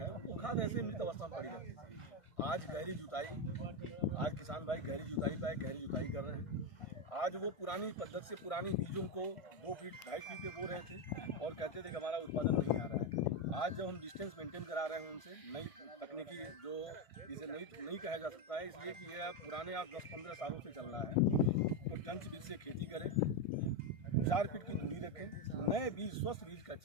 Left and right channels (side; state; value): right; late; 1.6 ms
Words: वो खाद ऐसे मृत अवस्था में पड़ी रहती थी। आज गहरी जुताई, आज किसान भाई गहरी जुताई पे गहरी जुताई कर रहे हैं। आज वो पुरानी पद्धति से पुरानी बीजों को 2 फीट 2.5 फीट पे बो रहे थे और कहते थे कि हमारा उत्पादन नहीं आ रहा है। आज जब हम डिस्टेंस मेंटेन करा रहे हैं उनसे, नई तकनीकी जो इसे नहीं कहा जा सकता है, इसलिए कि यह पुराने आज 10-15 सालों से चल रहा है। तो टंच बीज से खेती करें, 4 फीट की दूरी रखें, नए बीज, स्वस्थ बीज का